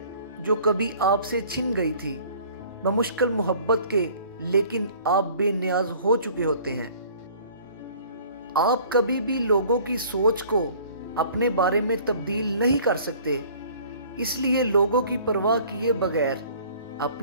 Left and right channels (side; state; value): both; inverted; correlation -0.52